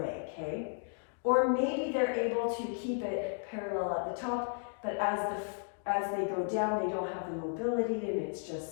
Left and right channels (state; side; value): silent; right; 55 dB below the other